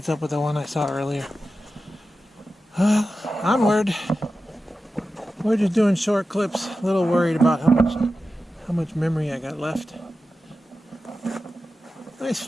up with the one I saw earlier. Onward. We're just doing short clips. A little worried about how much memory I got left. Nice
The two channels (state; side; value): normal; both; correlation 0.92